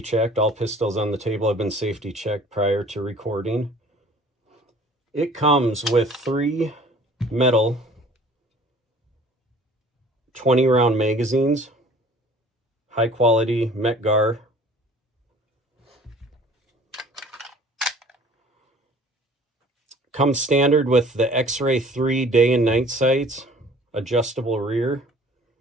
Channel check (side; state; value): both; normal; correlation 0.51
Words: checked. All pistols on the table have been safety checked prior to recording. It comes with 3 metal 20-round magazines, high quality Metgar. Comes standard with the X-Ray 3 day and night sights, adjustable rear.